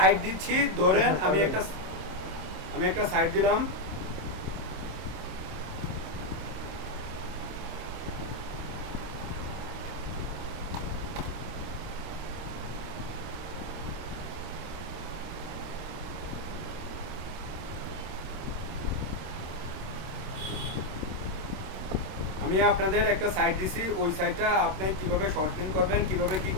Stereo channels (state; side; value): late; left; 26 ms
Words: দিচ্ছি, ধরেন আমি একটা সাইট দিলাম। আমি আপনাদের একটা সাইট দিছি, ওই সাইটটা আপনি কিভাবে শর্ট লিঙ্ক করবেন, কিভাবে কি